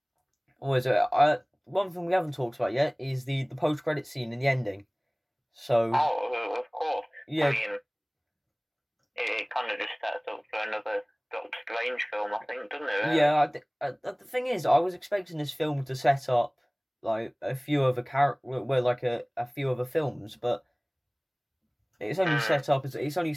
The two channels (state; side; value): identical; both; correlation 1.00